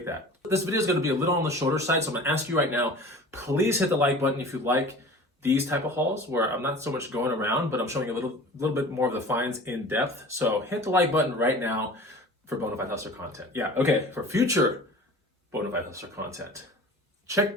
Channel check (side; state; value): both; normal; correlation 0.41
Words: that. This video is gonna be a little on the shorter side, so I'm gonna ask you right now, please hit the like button if you like these type of hauls where I'm not so much going around, but I'm showing a little bit more of the finds in depth. So hit the like button right now for Bonafide Hustler content. Yeah, okay, for future Bonafide Hustler content,